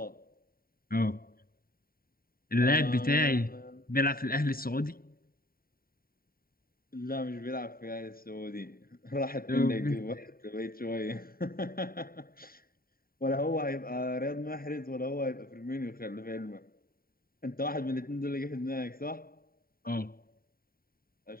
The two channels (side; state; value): right; late; 0.43 ms